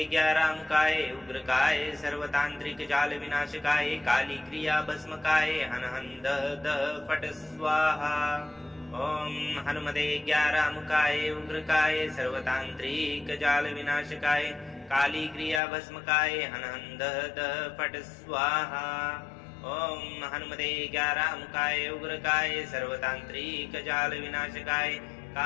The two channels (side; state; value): right; drops out; at 15.6 s